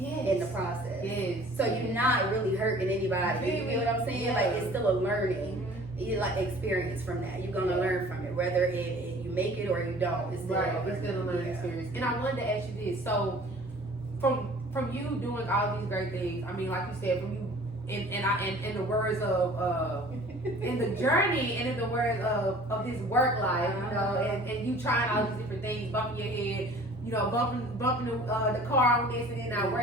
the process. Yes. So you're not really hurting anybody. You know what I'm saying? Yeah. Like it's still a learning. You like experience from that. You're gonna learn from it, whether you make it or you don't. It's still It's still a learning experience. And I wanted to ask you this. So, from you doing all these great things, I mean, like you said, from you, in the words of in the journey and in the words of this work life, you know, and you trying all these different things, bumping your head, you know, bumping the car on this and then not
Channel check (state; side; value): normal; both; correlation 0.49